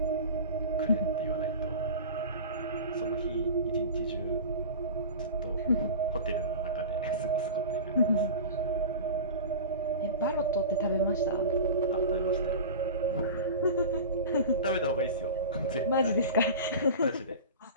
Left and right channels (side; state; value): both; inverted; correlation -0.32